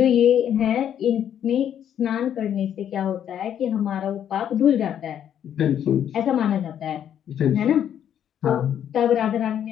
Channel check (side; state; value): right; quieter; 9.7 dB